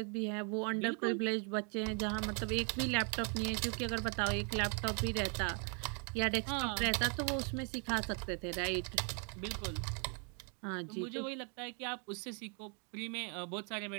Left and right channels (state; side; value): quieter; left; 38.9 dB